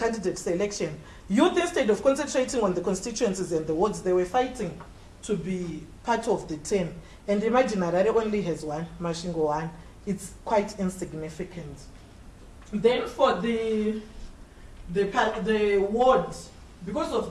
selection, youth, instead of concentrating on the constituencies and the wards, they were fighting to be part of the 10. And imagine Harare only has 1, Masvingo 1. It's quite insignificant. Then for the the ward, because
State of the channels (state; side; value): identical; both; correlation 1.00